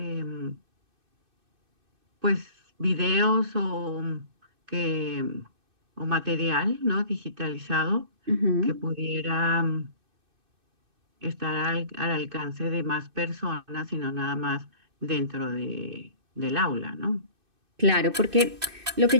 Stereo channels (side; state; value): left; late; 2.6 ms